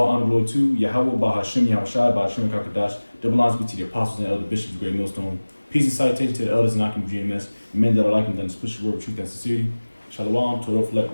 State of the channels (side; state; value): both; inverted; correlation -1.00